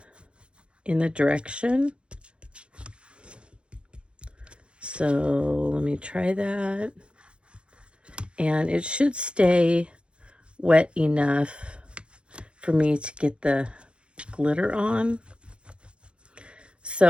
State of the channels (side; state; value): left; late; 0.057 ms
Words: in the direction. So let me try that. And it should stay wet enough for me to get the glitter on.